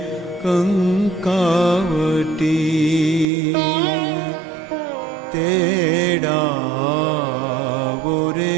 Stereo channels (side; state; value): left; drops out; at 3.2 s